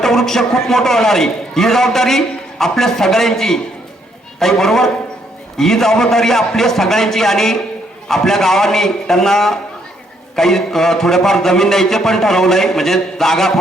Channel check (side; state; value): both; normal; correlation 0.71